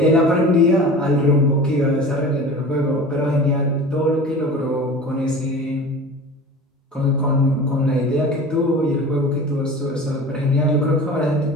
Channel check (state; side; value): normal; both; correlation 0.37